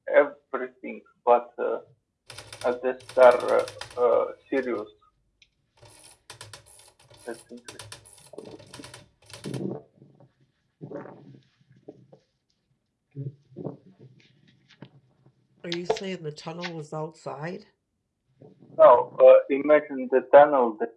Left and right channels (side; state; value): both; identical; correlation 1.00